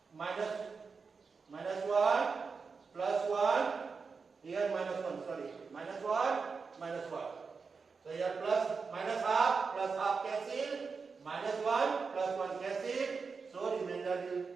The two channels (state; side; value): quieter; left; 5.0 dB